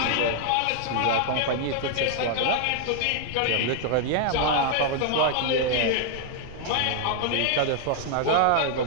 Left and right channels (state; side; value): different; both; correlation 0.00